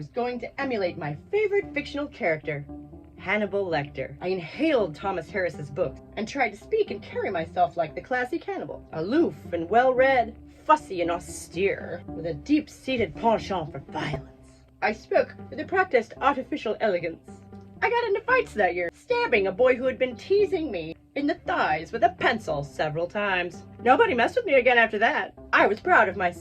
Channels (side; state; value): both; identical; correlation 1.00